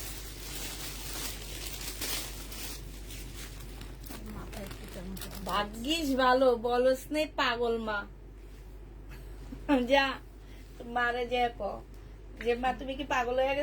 ভাগ্যিস ভালো, বলস নেই পাগল মা। যা মারে যে যে মা, তুমি কি পাগল হয়ে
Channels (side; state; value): both; identical; correlation 1.00